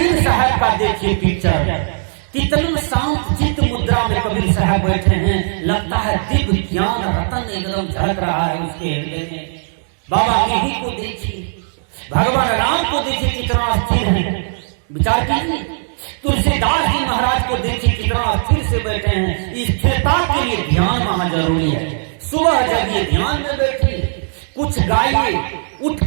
साहब का देखिए पिक्चर, कितने शांत चित्त मुद्रा में कबीर साहब बैठे हैं, लगता है दिव्य ज्ञान रतन एकदम झलक रहा है उसके हृदय में। बाबा यही को देखिए, भगवान राम को देखिए कितना स्थिर है, विचार कीजिए। तुलसीदास जी महाराज को देखिए कितना स्थिर से बैठे हैं। स्थिरता के लिए ध्यान वहां जरूरी है। सुबह जगिए, ध्यान में बैठिए, कुछ गाइए, उठ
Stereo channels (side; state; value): left; silent; digital silence